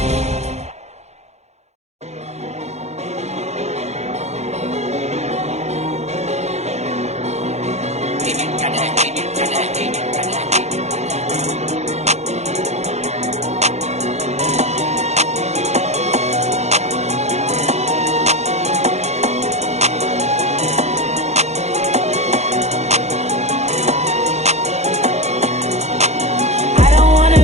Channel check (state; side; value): late; left; 0.32 ms